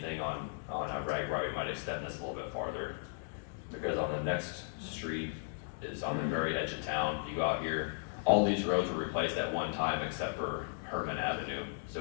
on Ragbri, we might extend this a little bit farther. Because on the next street is on the very edge of town. If you go out here, all these roads were replaced at one time except for Herman Avenue.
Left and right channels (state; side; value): silent; right; digital silence